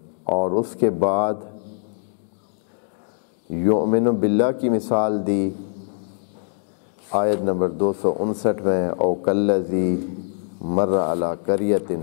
اور اس کے بعد یؤمن باللہ کی مثال دی آیت نمبر 259 میں، او کالذی مر علی قریۃ،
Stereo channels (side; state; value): right; silent; digital silence